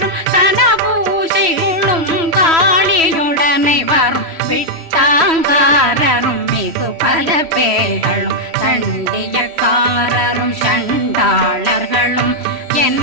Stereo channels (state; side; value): late; left; 3.1 ms